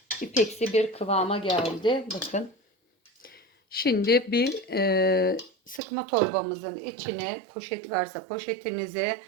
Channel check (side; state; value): left; drops out; at 5.8 s